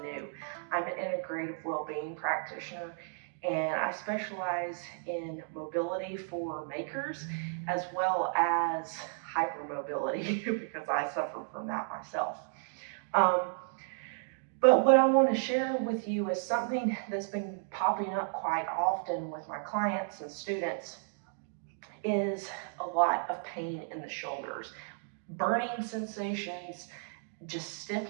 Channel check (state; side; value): silent; left; digital silence